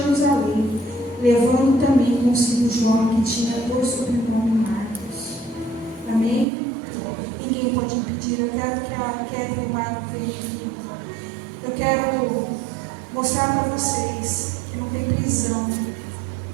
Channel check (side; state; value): left; drops out; at 6.5 s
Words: levando também consigo João, que tinha por sobrenome Marcos. Amém? Ninguém pode impedir. Eu quero que a Kétia e o Marco venham aqui. Eu quero mostrar para vocês que não tem prisão.